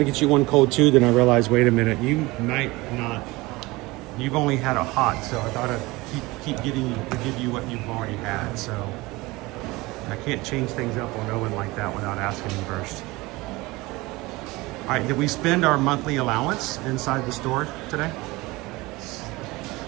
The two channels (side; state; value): left; quieter; 21.7 dB